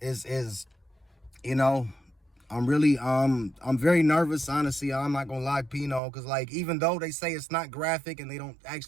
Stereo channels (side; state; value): left; drops out; at 6.0 s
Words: is I'm very nervous, honestly. I'm not gonna lie, Pino, because like, even though they say it's not graphic and they don't